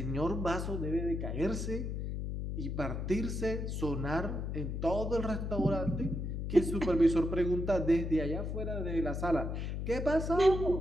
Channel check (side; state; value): left; noise; hum, 3 dB below the sound